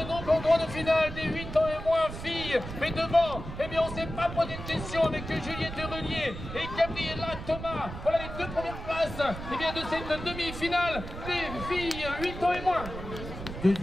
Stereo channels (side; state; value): right; noise; rumble, 9 dB below the sound